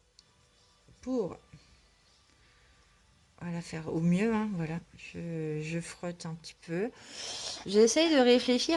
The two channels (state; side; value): identical; both; correlation 1.00